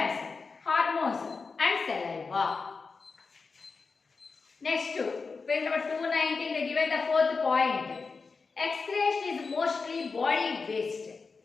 hormones and saliva. Next, page number 219, they given the 4th point. Excretion is mostly body waste.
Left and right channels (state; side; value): quieter; right; 4.6 dB